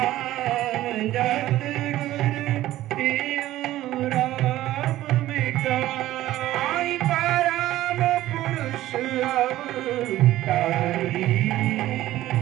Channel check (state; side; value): quieter; left; 14.9 dB